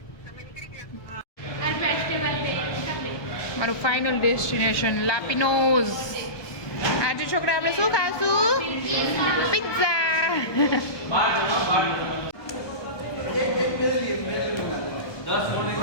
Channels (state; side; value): late; right; 1.2 ms